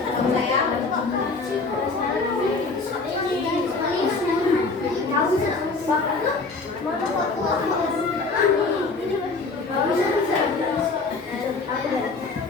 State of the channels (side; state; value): right; quieter; 3.9 dB